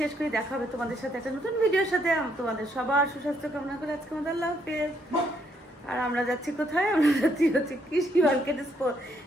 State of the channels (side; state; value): both; normal; correlation 0.72